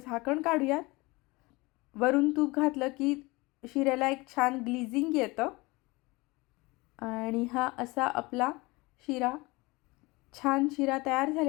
काढूयात. वरून तूप घातलं की शिऱ्याला एक छान ग्लिझिंग येतं आणि हा असा आपला छान शिरा तयार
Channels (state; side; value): quieter; right; 23.5 dB